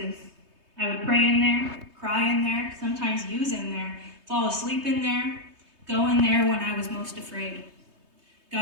I would pray in there, cry in there, sometimes use in there, fall asleep in there, go in there when I was most afraid.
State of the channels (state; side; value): late; left; 3.2 ms